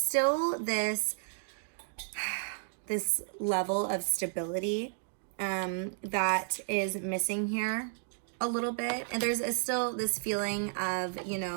this level of stability that is missing here a little bit. And there's still this feeling of,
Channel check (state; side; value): silent; left; digital silence